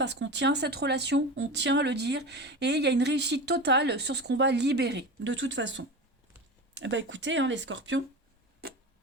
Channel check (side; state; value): both; normal; correlation 0.28